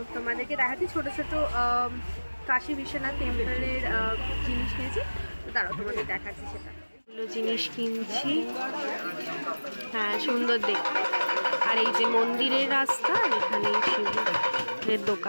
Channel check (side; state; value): both; inverted; correlation -1.00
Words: তোমাদেরকে দেখাচ্ছি ছোটো ছোটো কাশী বিশ্বনাথ টেম্পলের জিনিস কিনেছি। তো তারাও তোমাদের দেখাচ্ছি সেটা। এগুলো জিনিস কিনছি, হ্যাঁ সুন্দর দেখতে। আর এই যে মন্দিরের রাস্তা, এখানে শিবের